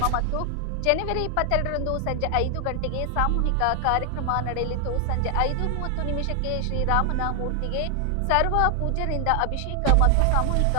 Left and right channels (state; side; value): different; both; correlation 0.00